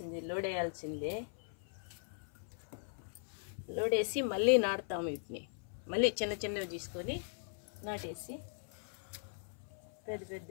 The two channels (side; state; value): right; silent; 52 dB below the other